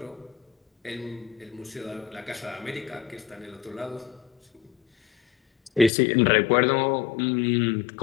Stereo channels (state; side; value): drops out; right; at 5.9 s